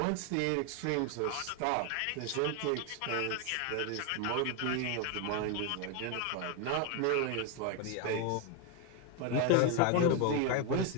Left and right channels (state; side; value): different; both; correlation 0.01